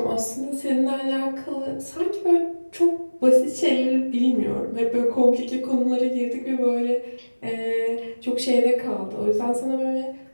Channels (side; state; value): both; inverted; correlation -1.00